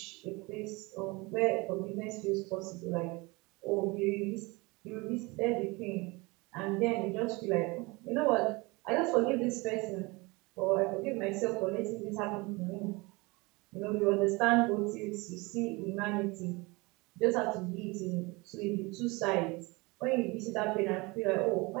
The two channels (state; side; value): quieter; left; 25.2 dB